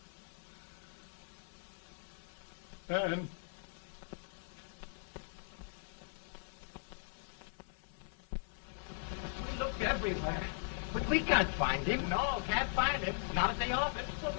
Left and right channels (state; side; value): silent; right; 51 dB below the other